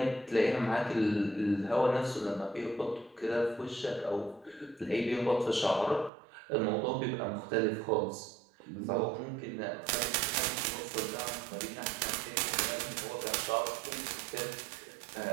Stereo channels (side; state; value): left; drops out; at 6.1 s